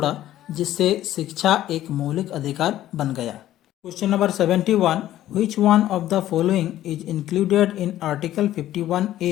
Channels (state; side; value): quieter; right; 13.3 dB